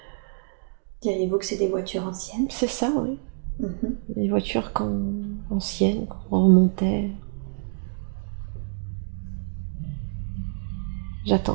Diriez-vous que c'est des voitures anciennes? C'est ça, oui. Mhm. Les voitures anciennes, qu'on remontait.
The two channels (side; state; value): left; silent; digital silence